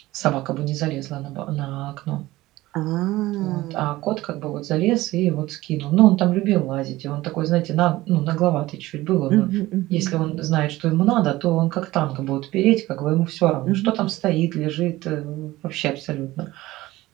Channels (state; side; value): quieter; left; 17.8 dB